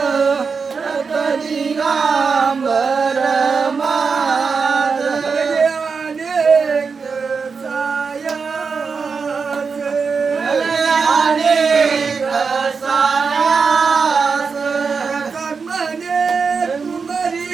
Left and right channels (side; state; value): left; quieter; 5.2 dB